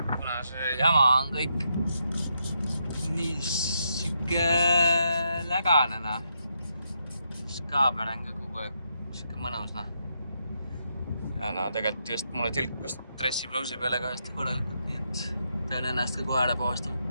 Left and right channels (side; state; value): both; inverted; correlation -0.80